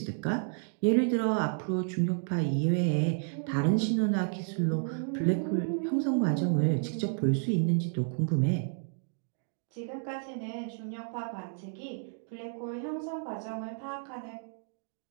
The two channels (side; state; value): left; silent; 57 dB below the other